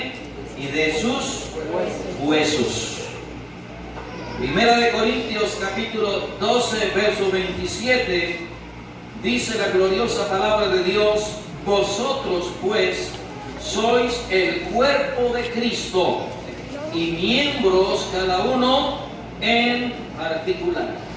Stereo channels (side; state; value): both; identical; correlation 1.00